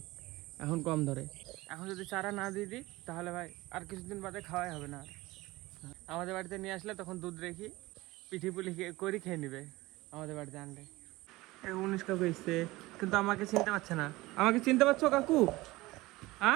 এখন কম ধরে। এখন যদি চারা না দিয়ে দিই তাহলে ভাই আর কিছুদিন বাদে খাওয়াই হবে না। আমাদের বাড়িতে নিয়ে আসলে তখন দুধ রেখি পিঠি পুলি করে খেয়ে নিবে আমাদের বাড়িতে আনলে। 19 কাকু এসছে, কিন্তু আমাকে চিনতে পারছে না। আমাকে চিনতে পারছো কাকু?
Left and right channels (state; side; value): quieter; left; 19.9 dB